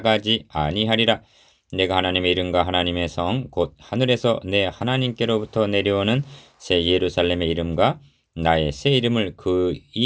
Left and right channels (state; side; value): identical; both; correlation 1.00